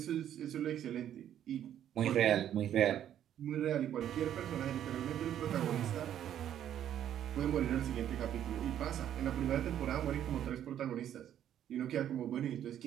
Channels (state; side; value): quieter; left; 10.6 dB